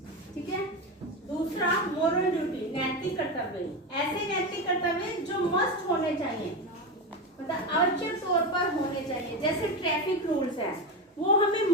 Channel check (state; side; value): normal; both; correlation 0.17